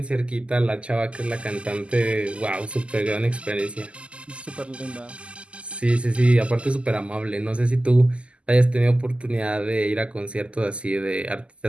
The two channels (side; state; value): left; late; 0.055 ms